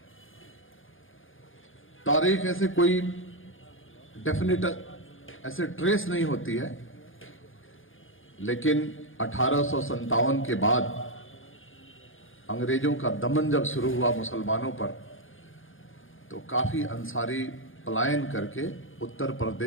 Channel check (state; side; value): late; right; 0.58 ms